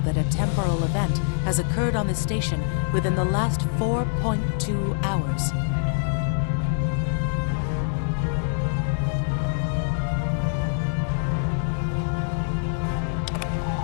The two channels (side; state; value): right; silent; digital silence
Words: that a temporal event has occurred on the station within the last 4.2 hours.